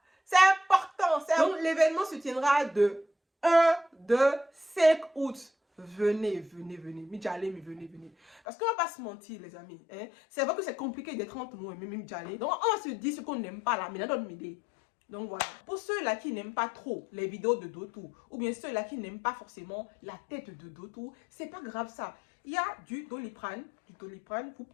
C'est important. Donc, l'événement se tiendra de 1, 2, 5 août. Venez, venez, venez. Midjalé, mais venez, venez. Parce qu'on ne va pas se mentir, les amis. Hein? C'est vrai que c'est compliqué d'être entre nous et Midjalé. Donc, on se dit ce qu'on n'aime pas là, mais dans notre idée. Donc voilà. Pour ceux-là qui n'aiment pas trop les vidéos de Dotou, ou bien ceux-là qui n'aiment pas forcément la tête de Dotou, c'est pas grave ça. Il y a du Doliprane. Vous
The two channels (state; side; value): drops out; right; at 8.4 s